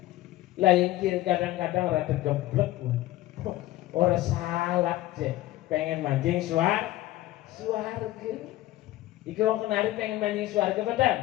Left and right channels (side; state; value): right; quieter; 16.1 dB